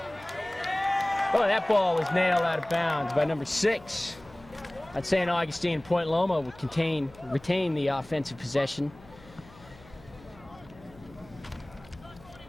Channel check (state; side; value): noise; left; hum, 23 dB below the sound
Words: Oh, that ball was nailed out of bounds by number 6. At St. Augustine, Point Loma would retain the offensive possession.